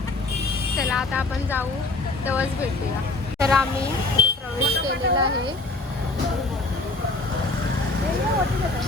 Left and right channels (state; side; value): quieter; right; 3.1 dB